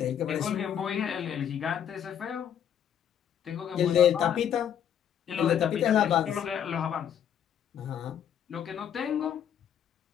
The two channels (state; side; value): quieter; right; 9.2 dB